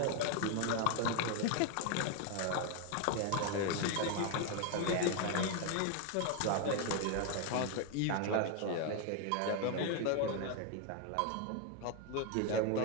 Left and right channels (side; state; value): both; different; correlation 0.01